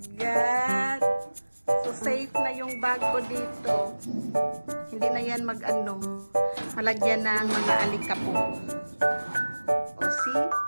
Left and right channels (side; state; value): both; inverted; correlation -1.00